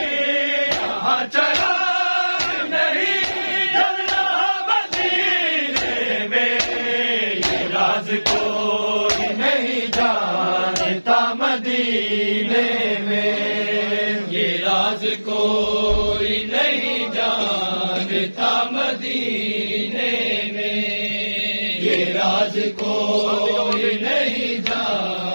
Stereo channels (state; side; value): inverted; both; correlation -1.00